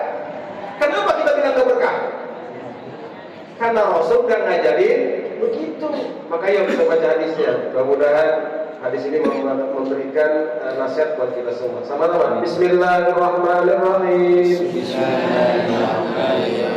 Kenapa kita bilang enggak berkah? Karena Rasul kan ngajarin begitu. Makanya kita baca hadisnya. Mudah-mudahan hadis ini memberikan nasihat buat kita semua. Sama-sama. Bismillahirrahmanirrahim.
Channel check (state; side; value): identical; both; correlation 1.00